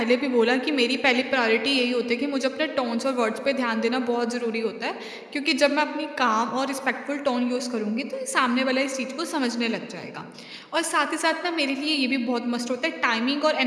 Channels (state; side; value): identical; both; correlation 1.00